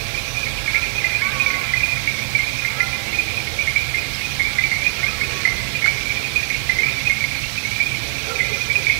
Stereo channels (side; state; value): left; silent; digital silence